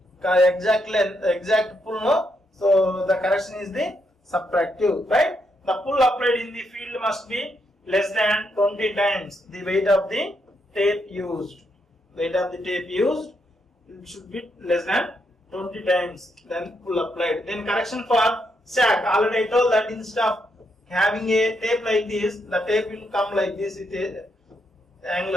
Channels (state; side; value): normal; both; correlation 0.79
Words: exact length, exact pull, no, so the correction is the subtractive. Right? The pull applied in the field must be less than 20 times the weight of the tape used. Weight of the tape used, it should be less than 20 times then pull applied. Then correction for sag. Already I told that instead of having a tape like this, the tape will come like this with a